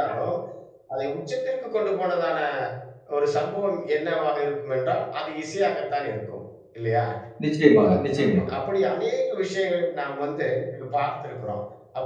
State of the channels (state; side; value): identical; both; correlation 1.00